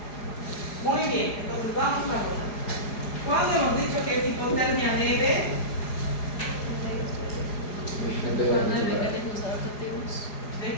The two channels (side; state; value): right; late; 4.9 ms